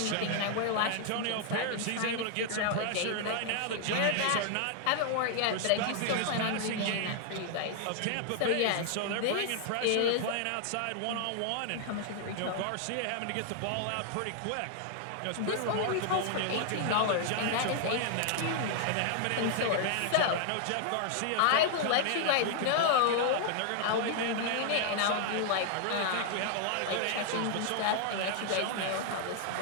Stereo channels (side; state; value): both; different; correlation 0.00